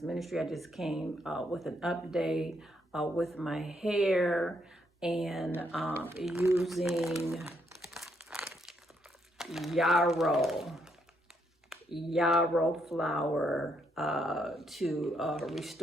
Ministry. I just came with an update with my hair and using yarrow flower to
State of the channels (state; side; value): normal; both; correlation 0.75